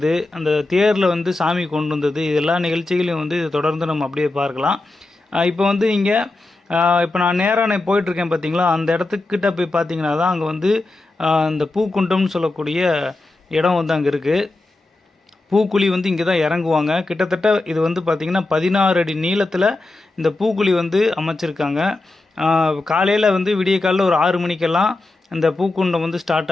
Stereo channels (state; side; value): quieter; right; 3.1 dB